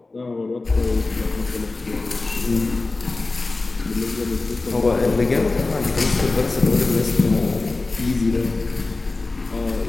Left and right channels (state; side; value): quieter; right; 3.4 dB